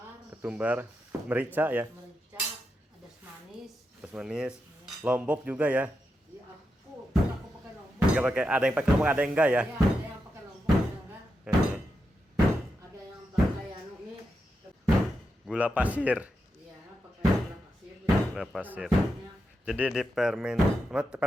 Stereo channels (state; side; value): normal; both; correlation 0.87